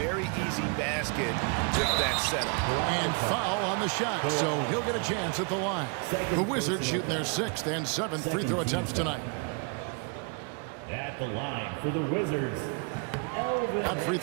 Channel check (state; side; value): quieter; left; 36.3 dB